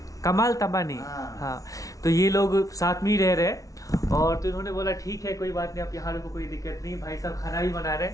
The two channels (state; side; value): late; right; 0.17 ms